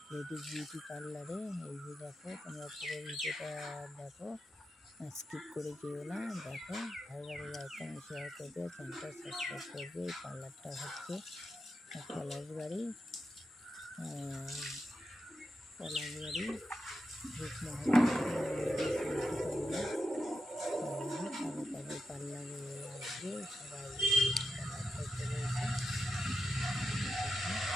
লেডিস বিউটি পার্লারে। এই যে দেখো, তোমরা পুরো ভিডিওটা দেখো, স্কিপ করে যেও না। দেখো, ভালো লাগলে লাইক কমেন্ট শেয়ার করবে, চ্যানেলটা সাবস্ক্রাইব করবে। এই পার্লারটা হচ্ছে Palashbari Palashbari Rupmahal ladies beauty parlour. তাদের তাদের পার্লারে আসবে সবাই, পার্লারটা চলে এসে দেখো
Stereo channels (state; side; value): normal; both; correlation 0.88